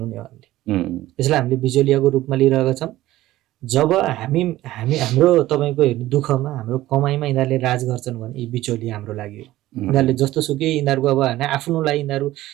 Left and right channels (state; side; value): quieter; left; 15.7 dB